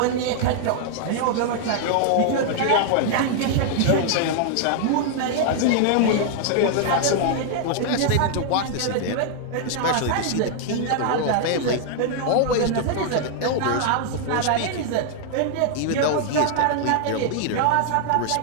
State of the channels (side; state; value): both; different; correlation 0.00